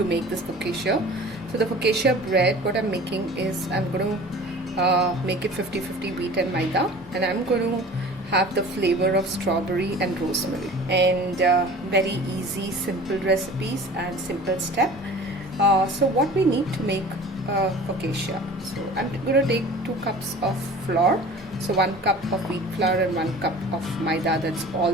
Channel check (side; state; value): both; normal; correlation 0.42